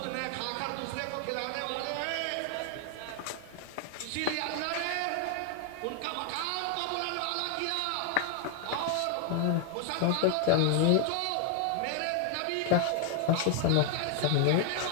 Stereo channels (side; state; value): both; different; correlation 0.00